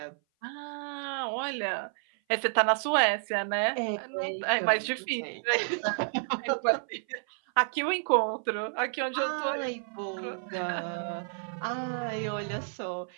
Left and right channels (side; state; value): left; silent; 56 dB below the other